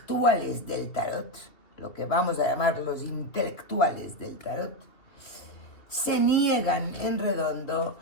del tarot, lo que vamos a llamar los intelectuales del tarot, se niegan en redondo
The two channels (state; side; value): late; right; 2.8 ms